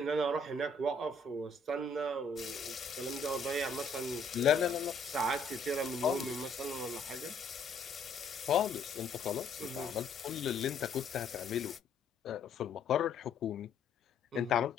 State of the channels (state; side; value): quieter; right; 3.6 dB